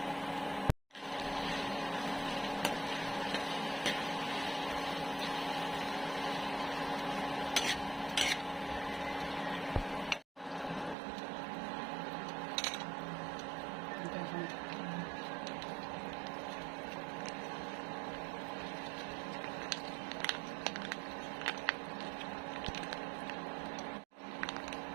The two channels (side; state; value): left; drops out; at 11.0 s